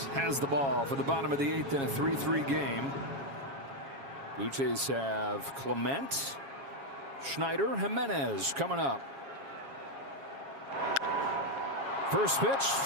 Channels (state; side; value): late; left; 7.3 ms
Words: has the ball for the bottom of the 8th in a 3-3 game. Blue Jays have Clement, Schneider, Jimenez coming up. First pitch,